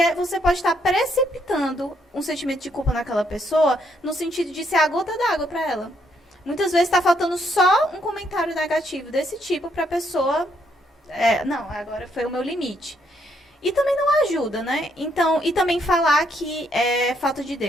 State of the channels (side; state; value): both; normal; correlation 0.73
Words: você pode estar precipitando um sentimento de culpa naquela pessoa no sentido de ser a gota d'água para ela. Muitas vezes está faltando só um comentário negativo desse tipo para a pessoa, não, agora foi o meu limite. E também não ajuda, né? Então, e também falar que é falta de